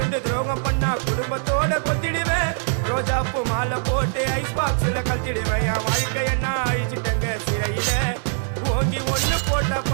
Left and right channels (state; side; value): silent; left; digital silence